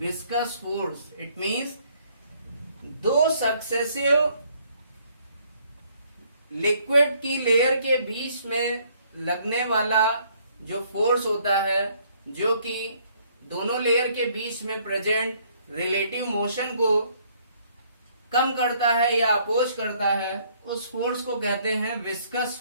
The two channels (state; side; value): inverted; both; correlation -0.65